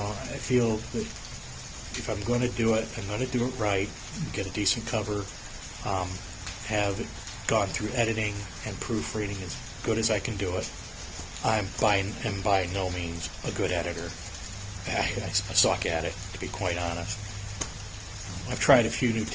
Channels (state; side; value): identical; both; correlation 1.00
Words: feel that if I'm going to do it, I'm going to do it right, get a decent cover, have it gone through editing and proofreading as good as I can do it. I'm by no means a good editor. I suck at it, to be quite honest. I've tried a few new